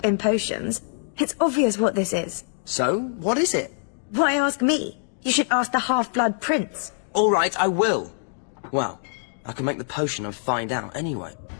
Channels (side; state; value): right; silent; digital silence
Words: in potions, it's obvious what this is. So, what is it? Why ask me? You should ask the Half-Blood Prince. All right, I will. Well, I can make the potion and find out anyway.